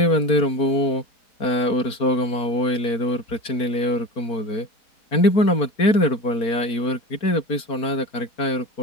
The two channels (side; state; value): right; late; 4.5 ms